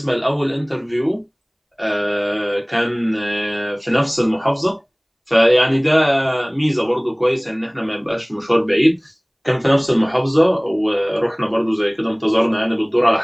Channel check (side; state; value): both; identical; correlation 1.00